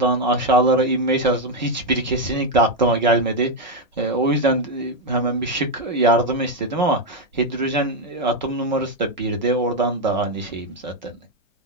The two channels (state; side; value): normal; both; correlation 0.04